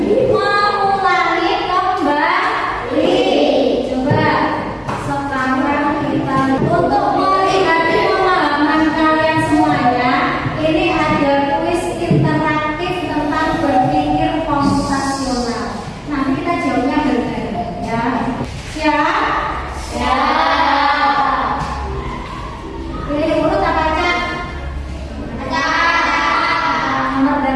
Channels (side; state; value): both; identical; correlation 1.00